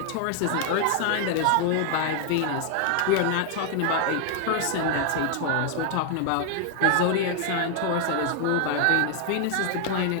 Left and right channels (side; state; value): both; different; correlation 0.00